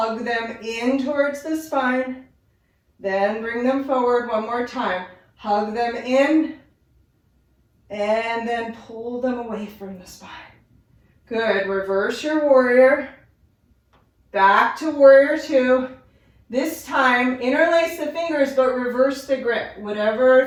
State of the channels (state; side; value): identical; both; correlation 1.00